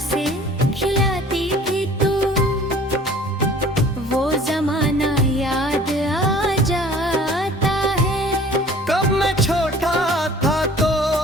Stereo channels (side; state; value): both; normal; correlation 0.49